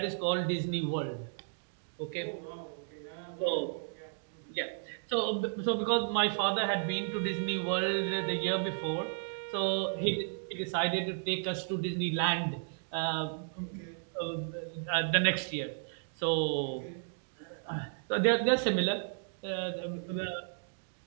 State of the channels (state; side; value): silent; left; digital silence